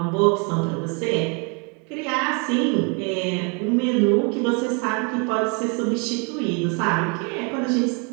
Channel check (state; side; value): quieter; left; 34.6 dB